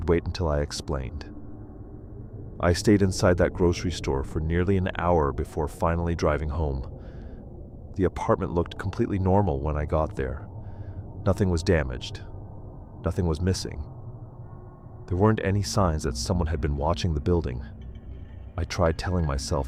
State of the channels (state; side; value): identical; both; correlation 1.00